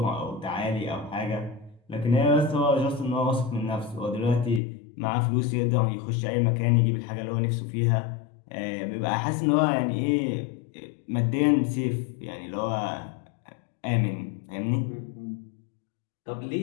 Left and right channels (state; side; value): drops out; right; at 4.6 s